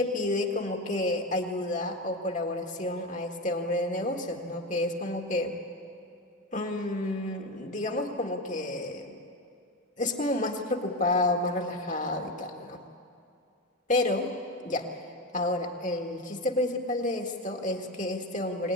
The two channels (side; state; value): both; normal; correlation 0.19